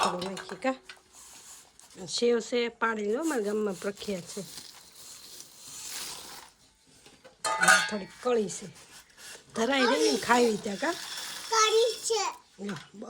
થોડું નાખીએ કા. સેવ છે પાડી લો, મારા ગામમાં પ્રખ્યાત છે. થોડીક કળી છે, ધરાઈ રહી ને ખાવી ત્યાં કા.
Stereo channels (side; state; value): both; identical; correlation 1.00